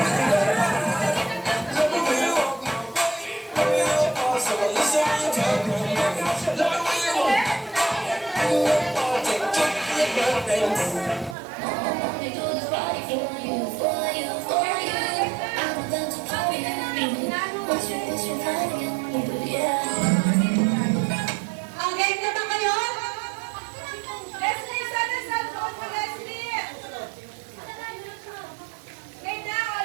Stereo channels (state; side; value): drops out; left; at 11.4 s